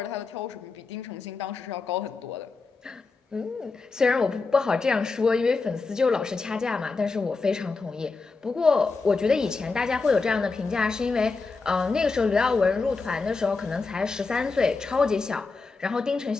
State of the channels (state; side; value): quieter; right; 4.2 dB